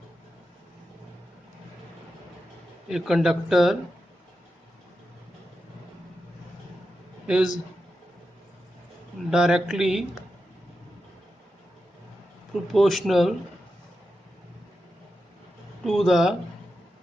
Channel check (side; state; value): both; normal; correlation 0.89